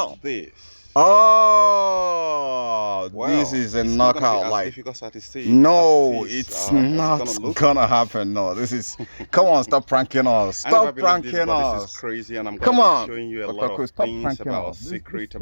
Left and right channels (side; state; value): both; inverted; correlation -1.00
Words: this. Oh, Well, this is a it's not knockout. gonna be as like, difficult as it seems, no, as it is, it's not gonna happen. No, this is. Come on, stop pranking us. Stop pranking us. This is crazy, and I'm Come gonna on. be showing you a Dr. lot of stop things about this